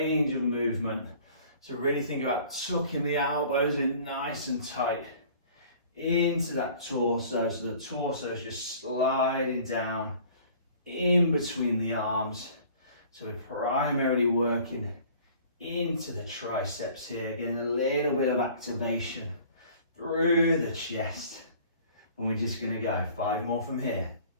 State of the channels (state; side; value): inverted; both; correlation -0.50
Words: of movement. So really think about tucking the elbows in nice and tight into that torso. So the torso is just sliding down in between the arms. So we're primarily working into the triceps here, getting a little bit of activation through the chest. And we're just going to go 5 more from here.